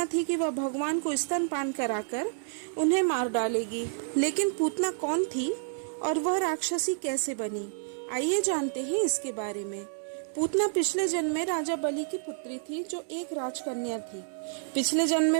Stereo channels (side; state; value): left; silent; digital silence